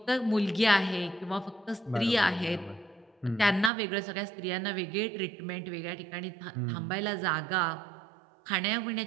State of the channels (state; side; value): drops out; left; at 3.7 s